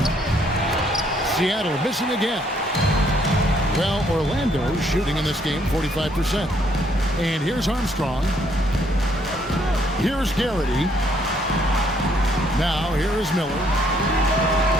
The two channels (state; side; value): normal; both; correlation 0.68